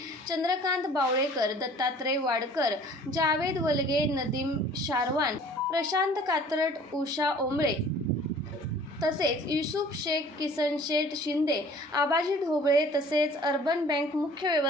चंद्रकांत बावळेकर, दत्तात्रय वाडकर, जावेद वलगे, नदीम शारवान, प्रशांत कात्रट, उषा ओंबळे तसेच युसुफ शेख, किसन शेठ शिंदे, आबाजी ढोबळे तसेच अर्बन बँक मुख्य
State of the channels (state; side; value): normal; both; correlation 0.50